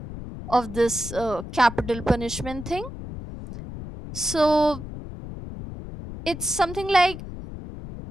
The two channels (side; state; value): left; noise; rumble, 11 dB below the sound